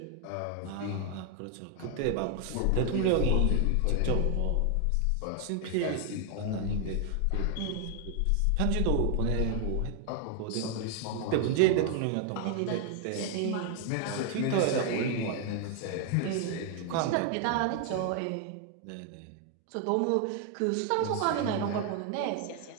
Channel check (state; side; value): different; both; correlation 0.00